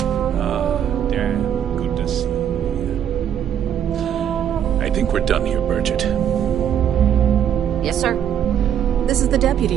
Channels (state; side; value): quieter; left; 9.5 dB